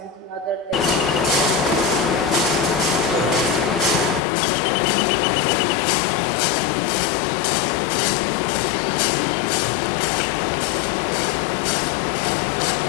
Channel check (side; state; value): right; drops out; at 4.2 s